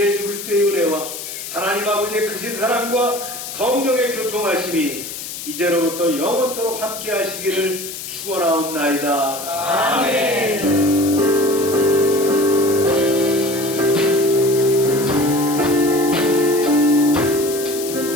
그리스도의 은혜와 하나님 아버지의 크신 사랑과 성령의 교통하심이 이제로부터 영원토록 함께 하시기를 축원하옵나이다. 아멘.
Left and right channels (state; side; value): noise; left; hiss, 9 dB below the sound